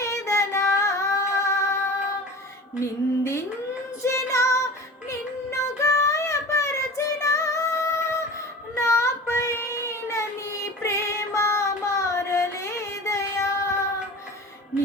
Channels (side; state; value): both; normal; correlation 0.36